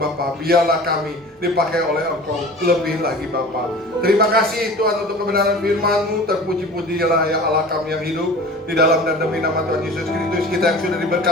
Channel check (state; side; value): normal; both; correlation 0.39